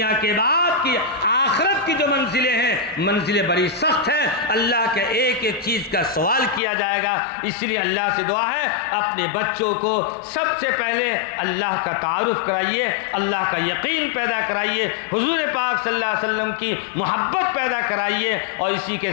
کے بعد کی آخرت کی جو منزلیں ہیں، منزلیں بڑی سخت ہیں، اللہ کے ایک ایک چیز کا سوال کیا جائے گا۔ اس لیے اللہ سے دعا ہے اپنے بچوں کو سب سے پہلے اللہ کا تعارف کرائیے، اللہ کا یقین پیدا کرائیے، حضور پاک صلی اللہ علیہ وسلم کی محبت پیدا کرائیے، اور اسی کے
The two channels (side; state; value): right; drops out; at 6.6 s